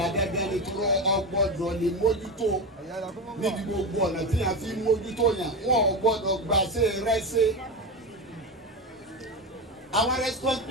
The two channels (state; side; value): normal; both; correlation 0.18